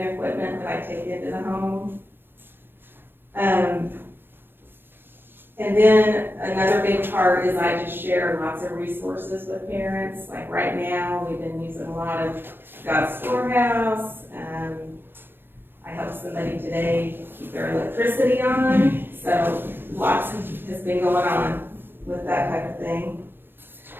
that I take into the home. And then another big part is I just share lots of resources with parents. Like right now, we've been using a lot of God's Storehouse. I helped somebody today keep their electricity on. So lots has been going on with that type of thing.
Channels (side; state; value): left; late; 0.10 ms